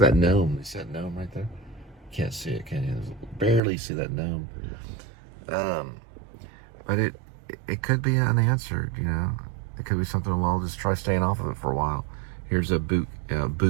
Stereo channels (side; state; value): left; drops out; at 3.6 s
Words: at that gnome. You see that gnome right there? Can't see it, can you? Barely see that gnome. but it could be unanswered, you know. It could be something, well, just try staying off of it for a while. Here's a boot, you